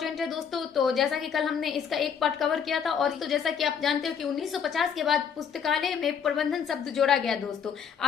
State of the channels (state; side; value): quieter; right; 7.3 dB